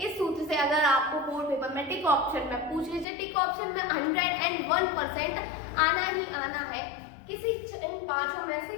सूत्र से अगर आपको बोर्ड पेपर में टिक ऑप्शन में पूछ लीजिए, टिक ऑप्शन में 101% आना ही आना है, किसी इन पांचों में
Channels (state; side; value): drops out; right; at 3.1 s